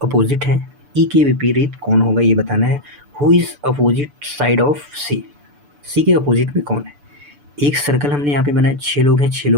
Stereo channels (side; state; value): left; late; 6.9 ms